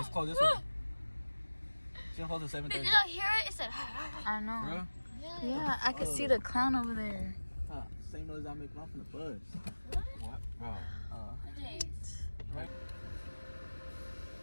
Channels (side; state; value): both; inverted; correlation -1.00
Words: closed this way. She don't close at 7:30. Did y'all hear it? It said. I know. Bro? Yeah, I can see the clown over there. Same noise I make off in the buzz. What? Bro. Right.